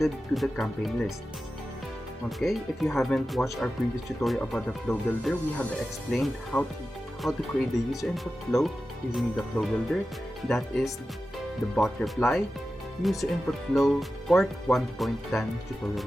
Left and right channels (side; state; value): both; normal; correlation 0.93